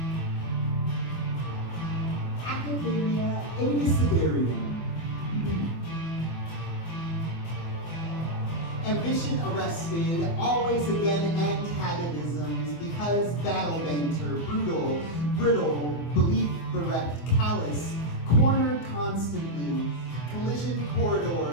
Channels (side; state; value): right; late; 25 ms